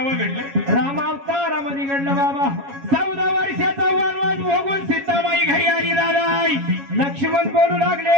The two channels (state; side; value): late; left; 7.2 ms